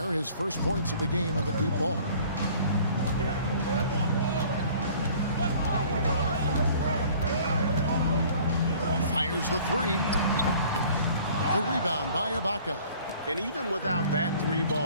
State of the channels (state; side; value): inverted; both; correlation -0.52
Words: His first points of the game on the deep ball. Fires the 3. The rebound by Ibaka. And even without that